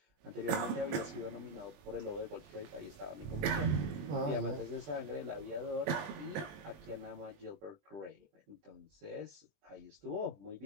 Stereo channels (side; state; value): left; late; 20 ms